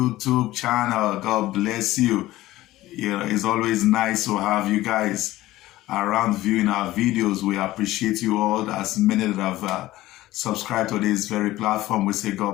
channel. God bless you. It's always nice to have you guys around viewing our videos. We appreciate you all. As many that have subscribed to this very platform, we say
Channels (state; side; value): quieter; right; 16.5 dB